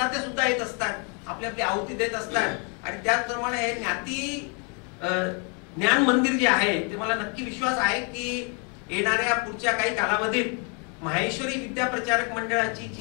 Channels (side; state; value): right; quieter; 36.2 dB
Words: सुद्धा येत असतात, आपली आपली आहुती देत असतात. आणि त्याचप्रमाणे हे ज्ञाती ज्ञान मंदिर जे आहे ते मला नक्की विश्वास आहे की येणाऱ्या पुढच्या काही कालावधीत माहेश्वरी विद्याप्रचारक मंडळाची